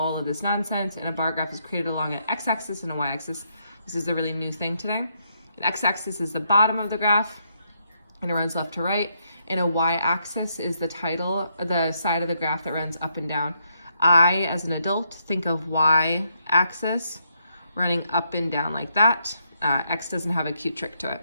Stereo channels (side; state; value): both; inverted; correlation -0.77